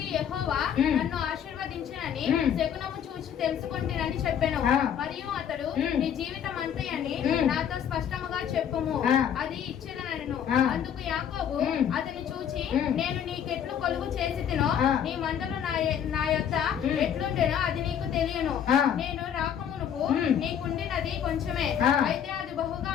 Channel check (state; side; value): quieter; right; 8.9 dB